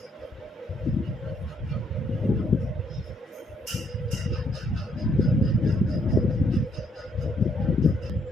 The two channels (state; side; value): normal; both; correlation 0.71